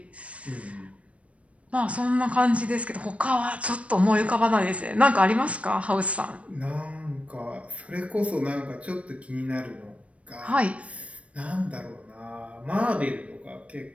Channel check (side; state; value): left; late; 0.063 ms